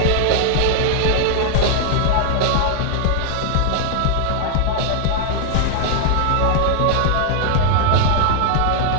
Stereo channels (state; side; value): different; both; correlation 0.00